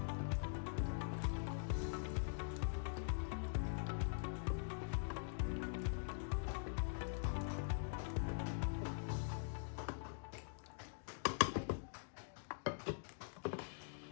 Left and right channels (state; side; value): silent; right; digital silence